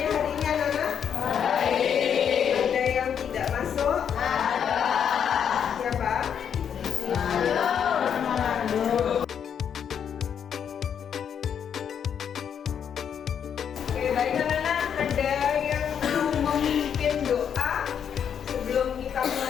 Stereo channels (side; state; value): right; quieter; 8.1 dB